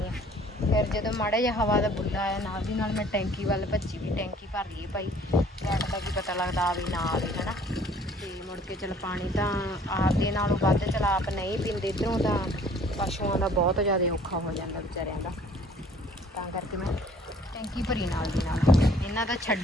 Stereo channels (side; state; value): both; normal; correlation 0.55